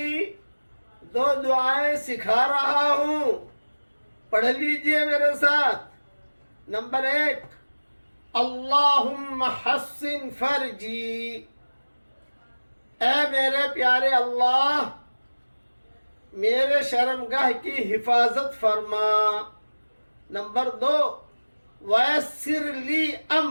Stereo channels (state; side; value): inverted; both; correlation -1.00